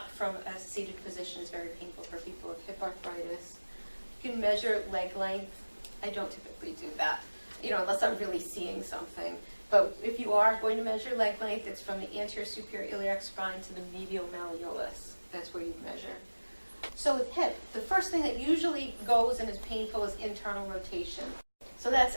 from a seated position is very painful for people with hip arthritis. You can measure leg length. I don't typically do that, unless I'm really seeing something. But if you are going to measure leg length, it's from the anterior superior iliac spine to the medial malleolus. That's where you measure. So with hip, the first thing that usually goes and is painful is internal rotation. So that's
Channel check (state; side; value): inverted; both; correlation -1.00